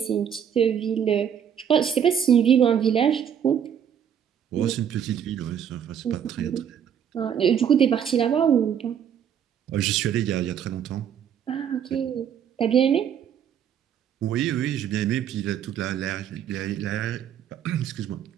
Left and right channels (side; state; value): left; quieter; 8.6 dB